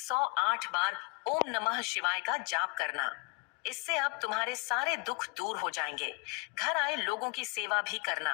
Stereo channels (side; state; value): right; quieter; 29.5 dB